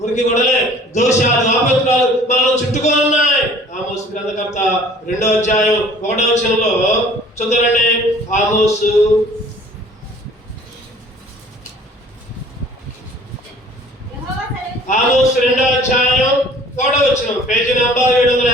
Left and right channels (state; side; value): normal; both; correlation 0.51